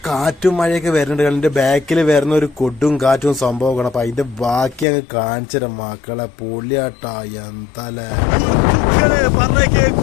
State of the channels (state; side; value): drops out; right; at 4.9 s